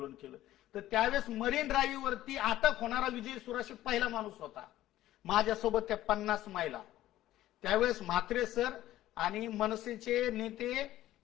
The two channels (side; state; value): right; quieter; 14.3 dB